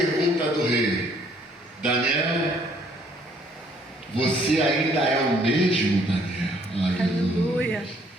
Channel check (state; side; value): normal; both; correlation 0.63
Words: do rei: Daniel, você ainda é o mesmo, Daniel? Aleluia.